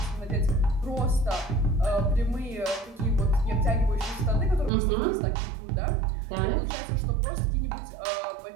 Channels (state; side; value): drops out; left; at 4.7 s